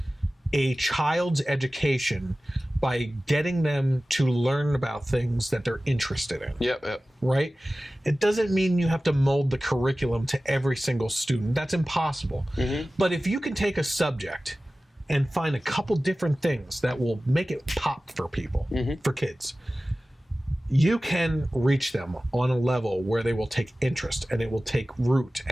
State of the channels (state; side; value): normal; both; correlation 0.96